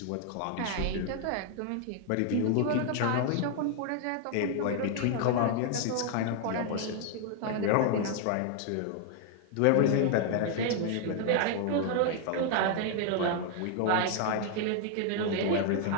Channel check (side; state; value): both; different; correlation 0.00